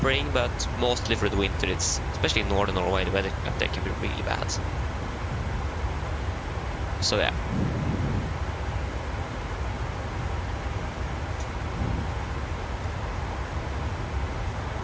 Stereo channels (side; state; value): both; identical; correlation 1.00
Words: but mostly through the winter. It's especially in northern Norway, the weather up there can be really bad. So yeah.